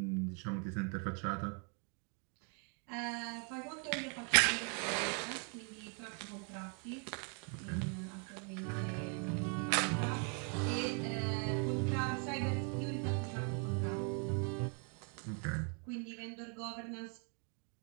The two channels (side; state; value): left; quieter; 39.1 dB